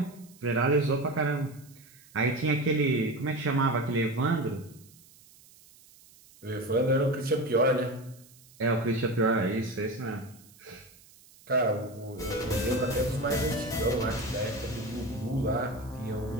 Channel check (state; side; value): noise; right; hiss, 25 dB below the sound